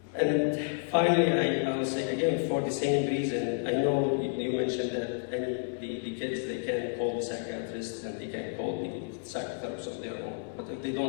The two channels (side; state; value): right; silent; digital silence